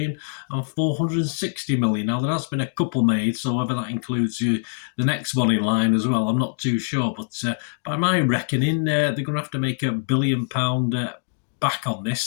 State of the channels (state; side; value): silent; right; digital silence